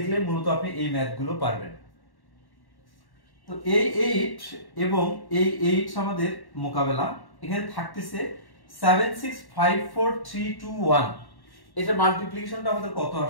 মূলত আপনি এই ম্যাথগুলো পারবেন। তো এই 8 এবং এই 8 আমাদের মোকাবেলা। এখানে থাকতেছে 7 6 5 4 3 2 1। এটা মাল্টিপ্লিকেশনটা আমাদের কত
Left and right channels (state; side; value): late; right; 1.1 ms